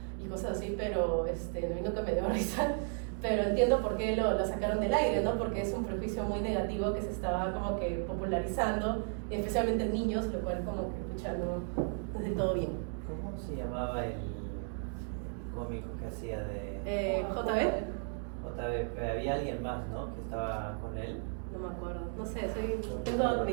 y cosas así, pero a mí nunca me dio risa. Pero entiendo por qué lo sacaron del aire, ¿no? Porque es un prejuicio muy negativo que se estaba como que popularizando, especialmente en niños, lo cual como que, pucha, no es del todo bien. ¿Cómo se llamaba el cómico que hacía de...? JB. había alguien más, ¿no? Que estaba con él. No me acuerdo, no sé, tengo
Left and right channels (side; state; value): left; silent; 55 dB below the other